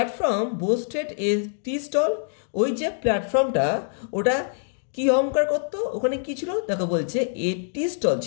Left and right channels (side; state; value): right; silent; digital silence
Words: boasted a tea stall, ওই যে প্ল্যাটফর্মটা ওটা কি অহংকার করতো? ওখানে কি ছিল? দেখো বলছে এ টি স্টল